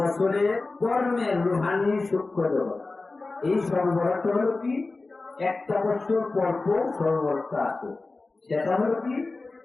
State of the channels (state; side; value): quieter; right; 3.5 dB